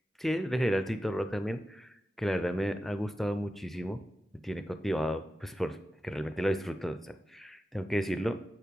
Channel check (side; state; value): both; normal; correlation 0.92